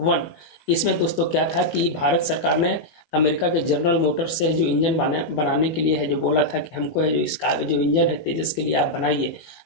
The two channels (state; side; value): late; right; 19 ms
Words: इसमें दोस्तों क्या था कि भारत सरकार ने अमेरिका के जनरल मोटर्स से जो इंजन बनाने के लिए है जो बोला था कि हमको है जो इसका जो इंजन है तेजस के लिए आप बनाइए